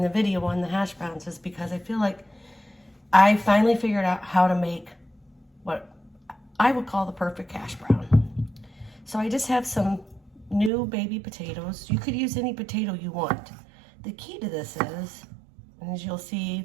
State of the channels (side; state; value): left; drops out; at 10.7 s